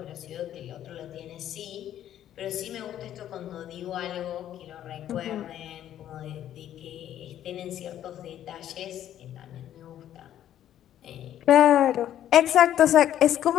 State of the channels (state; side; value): quieter; right; 11.4 dB